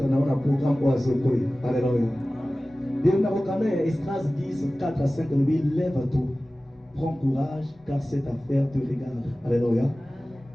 on a un programme pour les autres. Alléluia. Dieu n'a aucun Esdras 10 4 à 5 lui lève-toi. Prends courage car cette affaire te regarde. Alléluia.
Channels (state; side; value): normal; both; correlation 0.97